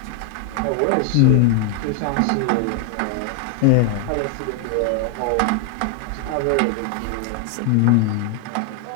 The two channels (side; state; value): both; different; correlation 0.00